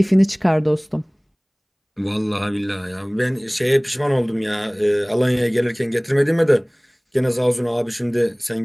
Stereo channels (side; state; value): both; identical; correlation 1.00